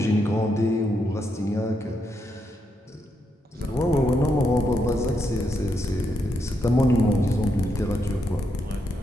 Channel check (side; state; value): both; normal; correlation 0.81